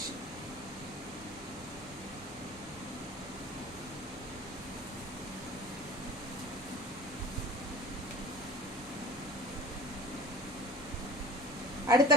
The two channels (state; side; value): normal; both; correlation 0.42